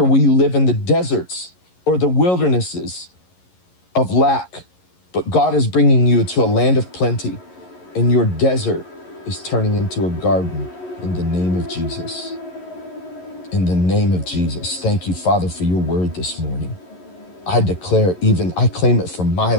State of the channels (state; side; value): late; right; 11 ms